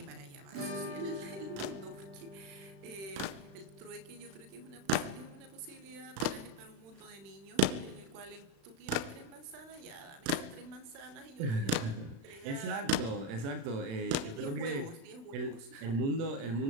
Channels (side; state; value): left; late; 36 ms